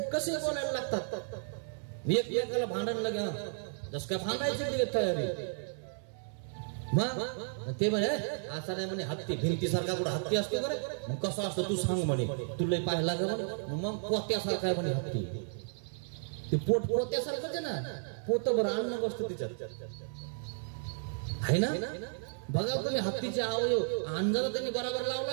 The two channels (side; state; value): left; silent; 56 dB below the other